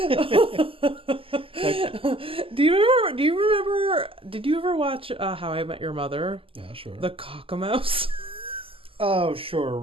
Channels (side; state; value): left; late; 0.26 ms